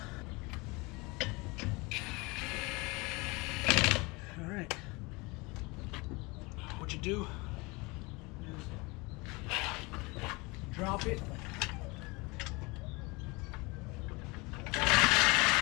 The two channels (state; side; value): quieter; right; 25.6 dB